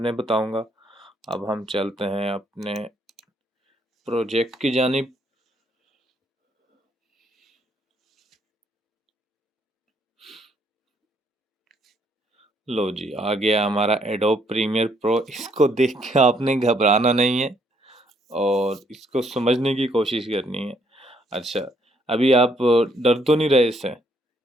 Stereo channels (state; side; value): normal; both; correlation 0.69